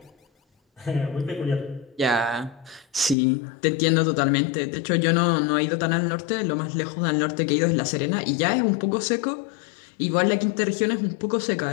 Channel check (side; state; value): right; drops out; at 3.2 s